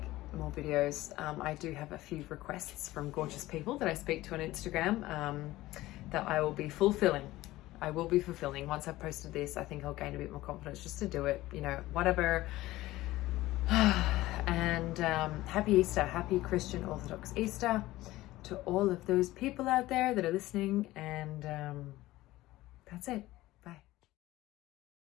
more videos. I do have a few requests from gorgeous people that I speak to on Instagram that I will be fulfilling. I will be fulfilling. Once I've posted this, I think I'll gain a bit more confidence just to do it, you know, whatever. And happy Easter, happy Christian Orthodox Easter to all of those people out there that are listening, and that's it.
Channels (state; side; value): quieter; right; 17.2 dB